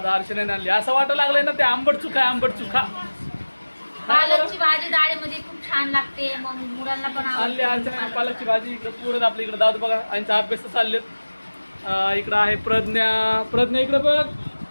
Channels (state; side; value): inverted; both; correlation -1.00